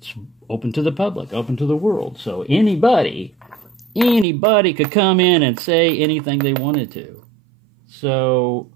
open to the public, open to the world. So anybody could come in and say anything they wanted to. So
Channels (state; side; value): drops out; left; at 4.2 s